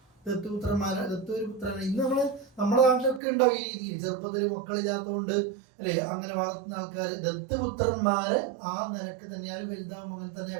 ദത്തൊരു പുത്രനാണ്. ഇന്ന് നമ്മുടെ നാട്ടിലൊക്കെ ഉണ്ടാവും ഈ രീതിയിൽ. ചെറുപ്പത്തിൽ മക്കളില്ലാത്തതുകൊണ്ട് അല്ലെ അങ്ങനെ വളർത്തുന്ന ആൾക്കാർ ദത്തുപുത്രന്മാരെ ആ നിരക്ക് തന്നെയാണ് വലുതാവും അങ്ങനെ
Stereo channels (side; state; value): left; drops out; at 3.2 s